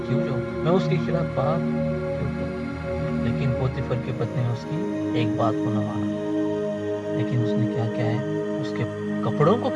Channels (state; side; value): identical; both; correlation 1.00